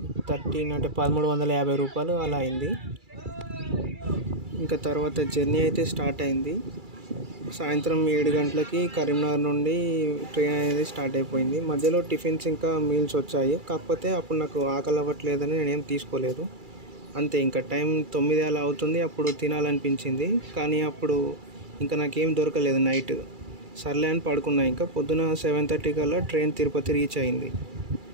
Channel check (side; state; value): left; late; 2.3 ms